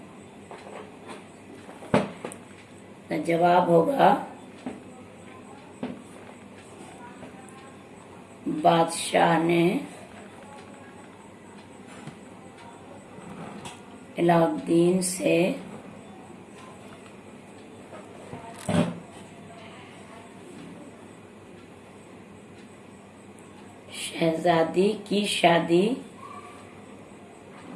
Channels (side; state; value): both; identical; correlation 1.00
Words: तो जवाब होगा बादशाह ने अलाउद्दीन से शहजादी की शादी